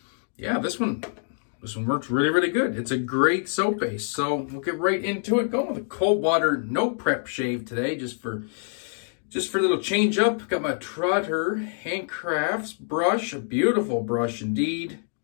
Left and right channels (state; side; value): silent; right; digital silence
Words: yeah, this one works really good. It's a great soap base, so we'll get right into it. Going with a cold water, no prep shave today, just for a little change up. Got my Trotter Handcrafts brush, a beautiful brush indeed.